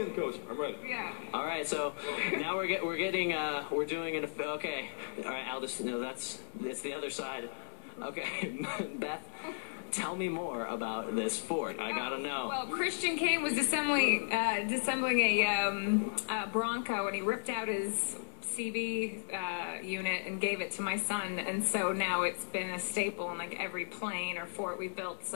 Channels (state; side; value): silent; right; 54 dB below the other